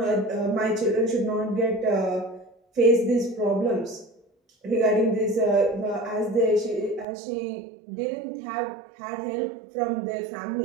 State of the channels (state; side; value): drops out; left; at 7.1 s